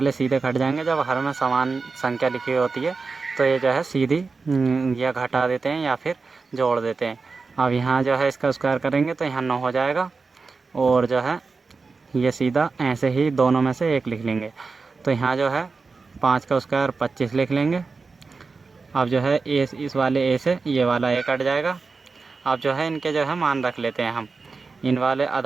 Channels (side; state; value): left; quieter; 4.4 dB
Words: सीधे घट जाएंगे। जब हर में समान संख्या लिखी हुई होती है तो ये जो है सीधी या घटा देते हैं या फिर जोड़ देते हैं। अब यहाँ जो है इसका स्क्वायर करेंगे तो यहाँ 9 हो जाएगा, और जो है ये सीधा ऐसे ही दोनों में से 1 लिख लेंगे। तो यहाँ जो है 5 का स्क्वायर 25 लिख लेंगे। अब जो है ए इस वाले ए से ये वाला ए कट जाएगा। अब जो है इनके जो है मान रख लेते हैं हम। इन वाले